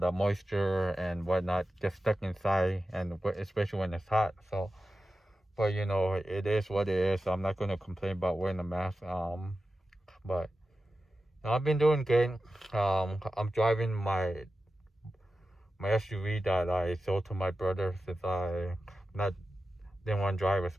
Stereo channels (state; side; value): normal; both; correlation 0.93